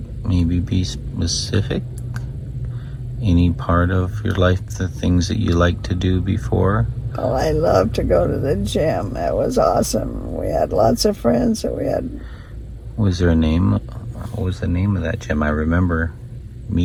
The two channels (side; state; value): both; identical; correlation 1.00